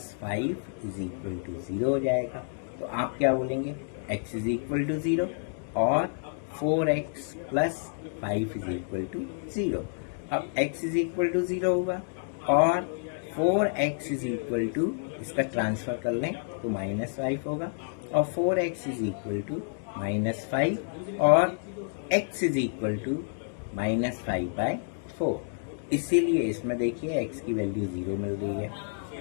5 is equal to 0 हो जाएगा। तो आप क्या बोलेंगे, x इज इक्वल टू 0 और 4x plus 5 is equal to 0। अब x इज इक्वल टू 0 होगा और 4x इज इक्वल टू, इसका ट्रांसफर कर लें तो -5 होगा और 4x इज इक्वल टू -5 और x इज इक्वल टू -5/4। इसीलिए इसमें देखिए x की वैल्यू 0 मिल रही है।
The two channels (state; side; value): silent; right; digital silence